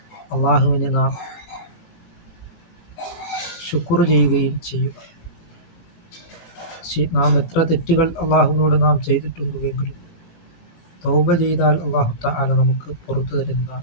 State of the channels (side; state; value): right; late; 17 ms